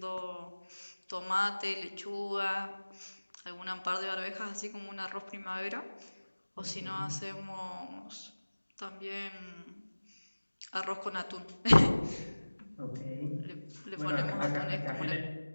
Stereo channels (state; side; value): inverted; both; correlation -1.00